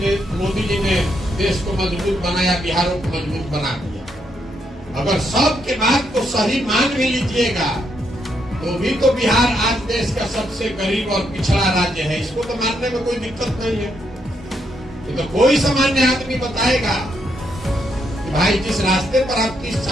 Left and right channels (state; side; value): normal; both; correlation 0.77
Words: मोदी जी ने देश को मजबूत बनाया, बिहारों को मजबूत बना दिया। अगर सबके बात को सही मान भी लीजिएगा, तो भी तो बिहार आज देश का सबसे गरीब और पिछड़ा राज्य है। इसको तो मानने में कोई दिक्कत नहीं है। तो कोई सामान्य आदमी बताएगा कि भाई जिस रास्ते पर आप